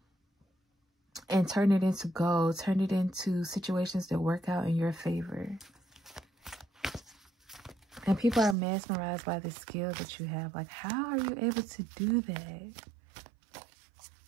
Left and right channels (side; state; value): left; drops out; at 8.6 s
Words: and turn it into gold. Turn it into situations that work out in your favor. And people are mesmerized by the skill that you have. Like, how are you able to do that?